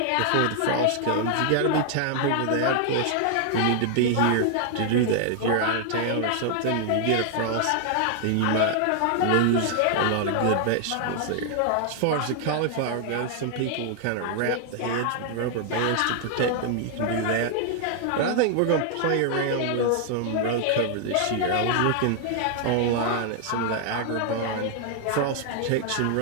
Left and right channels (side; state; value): both; different; correlation 0.00